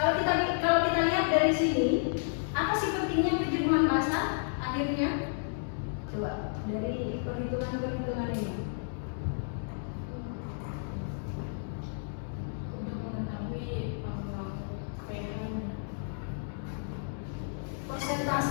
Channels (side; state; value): right; silent; digital silence